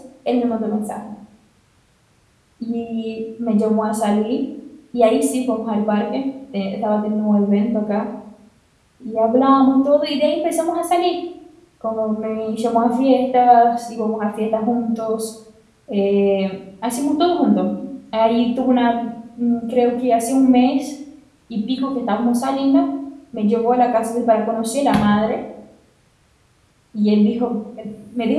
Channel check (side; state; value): both; identical; correlation 1.00